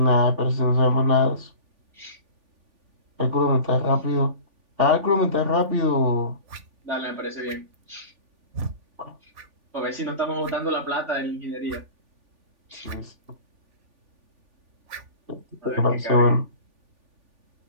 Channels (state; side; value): late; left; 3.5 ms